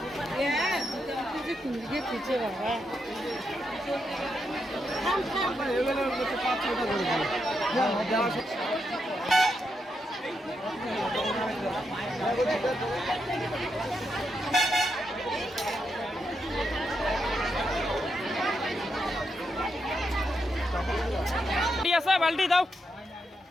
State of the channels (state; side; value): normal; both; correlation 0.83